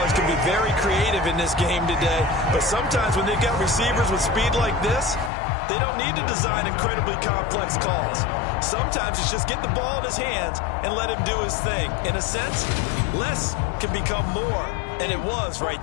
can be very creative in this game today, but sometimes when they've got receivers with speed like this, they don't need to design incredibly complex calls. Sometimes it's just get the ball in his hands and let him do his thing. In a sense, less can become more, and it was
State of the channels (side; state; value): right; drops out; at 5.3 s